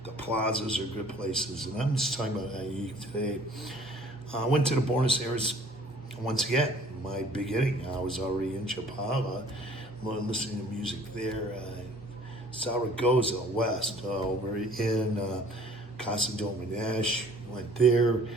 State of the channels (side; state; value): both; normal; correlation 0.54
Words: The plazas are good places, and I'm just talking about Ajijic today. I went to the Buenos Aires once again. My beginning, I was already in Chapala, listening to music there. Zaragoza West, over in Casa Dominesh, went there.